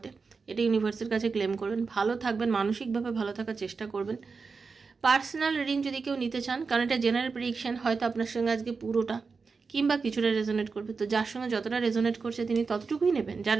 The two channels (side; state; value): left; quieter; 4.8 dB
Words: এটা ইউনিভার্সের কাছে ক্লেম করবেন। ভালো থাকবেন, মানসিকভাবে ভালো থাকার চেষ্টা করবেন। পার্সোনাল রিডিং যদি কেউ নিতে চান, কারণ এটা জেনারেল প্রেডিকশন, হয়তো আপনার সঙ্গে আজকে পুরোটা কিংবা কিছুটা রেজোনেট করবে, তো যার সঙ্গে যতটা রেজোনেট করছে তিনি ততটুকুই নেবেন, যার